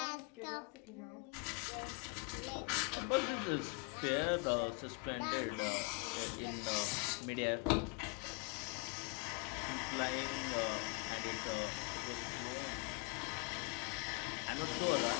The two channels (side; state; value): right; quieter; 29.9 dB